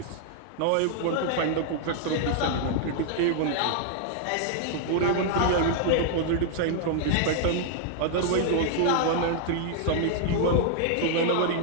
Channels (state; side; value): different; both; correlation -0.01